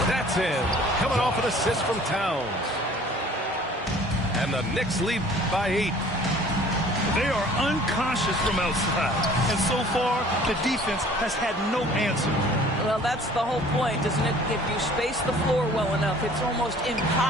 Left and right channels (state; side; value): normal; both; correlation 0.51